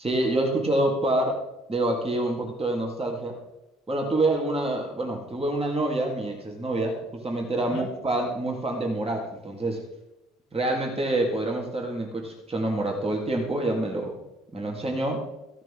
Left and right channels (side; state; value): both; normal; correlation 0.64